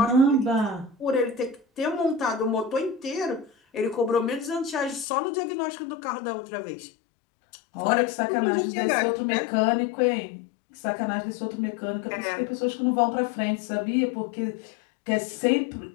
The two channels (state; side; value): drops out; right; at 5.1 s